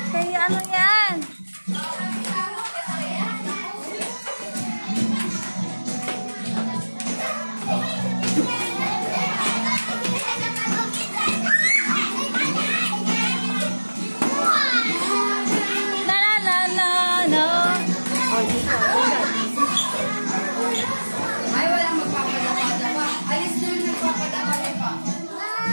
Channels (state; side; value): inverted; both; correlation -1.00